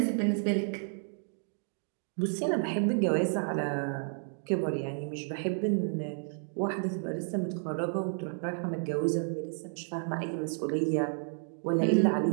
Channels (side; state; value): left; silent; 57 dB below the other